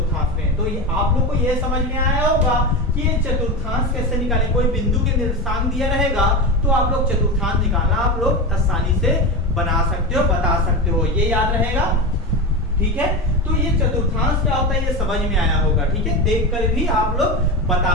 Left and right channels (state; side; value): normal; both; correlation 0.20